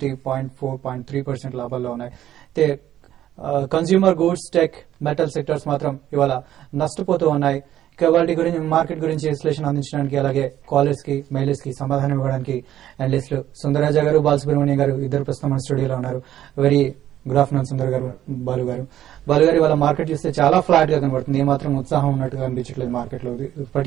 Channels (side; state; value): left; quieter; 12.0 dB